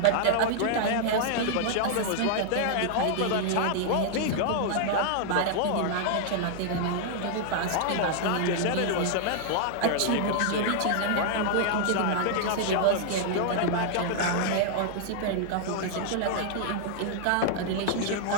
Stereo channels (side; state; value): both; different; correlation -0.01